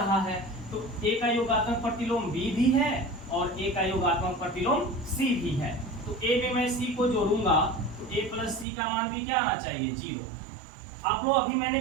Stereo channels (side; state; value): left; drops out; at 8.7 s